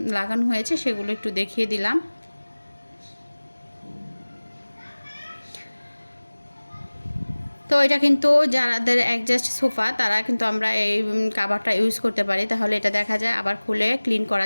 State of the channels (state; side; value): inverted; both; correlation -1.00